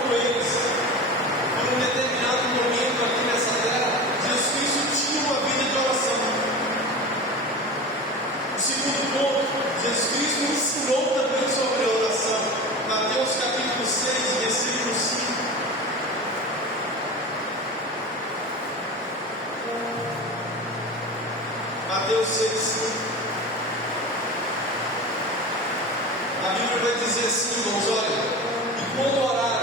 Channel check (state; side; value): normal; both; correlation 0.30